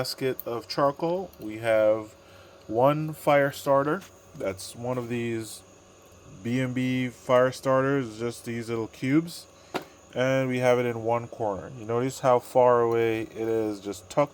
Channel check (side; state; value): both; identical; correlation 1.00